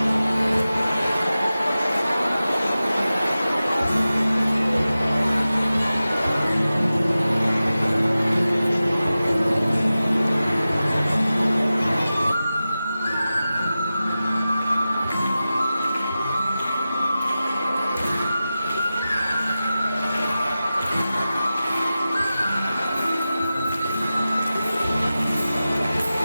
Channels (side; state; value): both; inverted; correlation -0.94